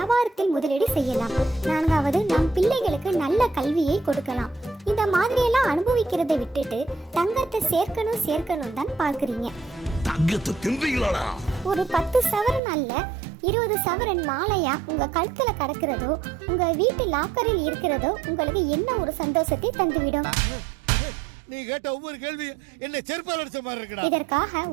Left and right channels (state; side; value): drops out; left; at 12.6 s